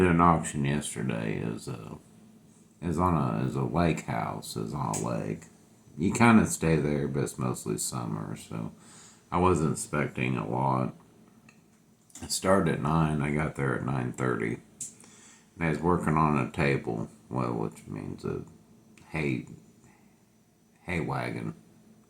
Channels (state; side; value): identical; both; correlation 1.00